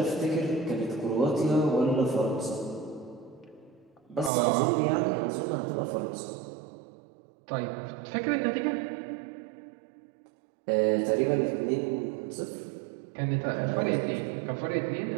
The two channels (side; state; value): left; drops out; at 4.3 s